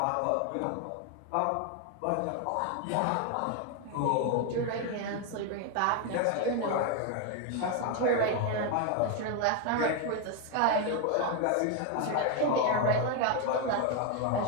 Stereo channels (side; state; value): both; different; correlation 0.01